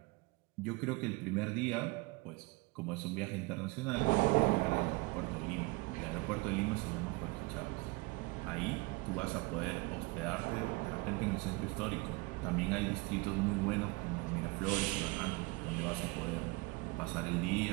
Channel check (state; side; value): quieter; left; 25.0 dB